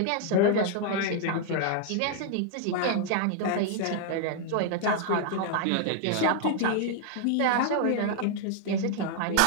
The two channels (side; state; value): both; different; correlation 0.00